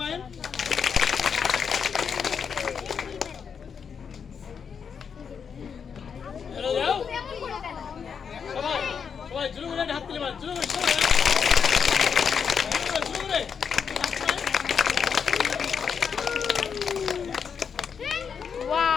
হ্যালো যাও সবাই সবাই জুড়ে করে হাত তুলি মায়ের জুড়ে করে সবাই জুড়ে করে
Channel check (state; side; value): quieter; right; 6.7 dB